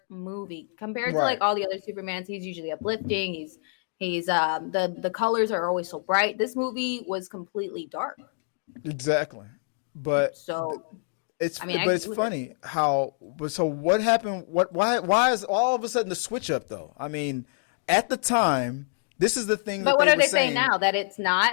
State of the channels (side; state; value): right; silent; digital silence